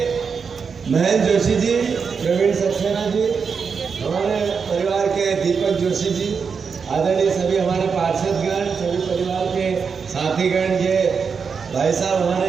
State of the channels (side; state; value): left; quieter; 5.8 dB